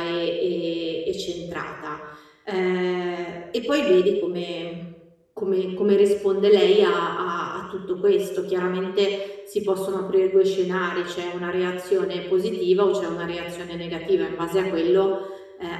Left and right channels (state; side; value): identical; both; correlation 1.00